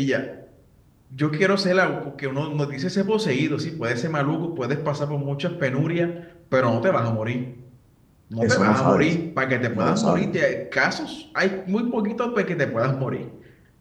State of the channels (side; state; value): both; identical; correlation 1.00